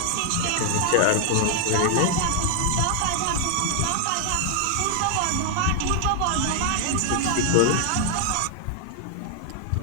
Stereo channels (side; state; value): both; different; correlation 0.00